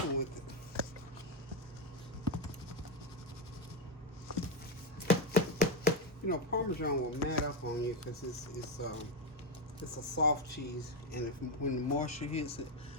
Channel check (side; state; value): both; normal; correlation 0.06